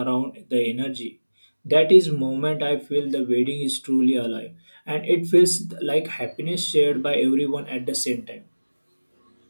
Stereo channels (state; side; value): inverted; both; correlation -1.00